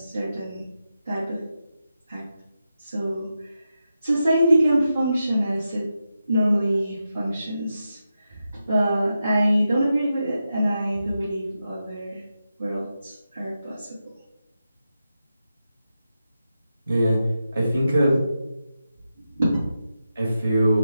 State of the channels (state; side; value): inverted; both; correlation -0.89